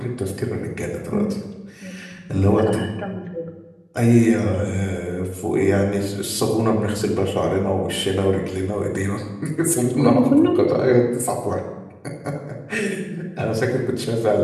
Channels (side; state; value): both; identical; correlation 1.00